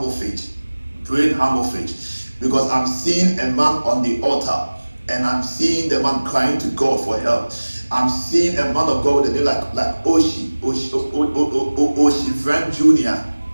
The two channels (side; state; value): both; inverted; correlation -1.00